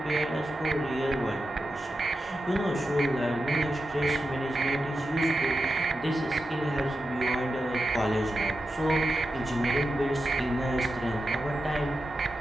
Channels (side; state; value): both; normal; correlation 0.90